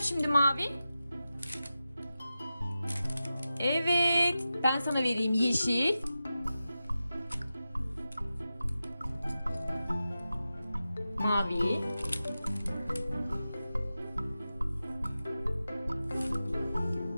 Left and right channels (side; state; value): both; inverted; correlation -0.93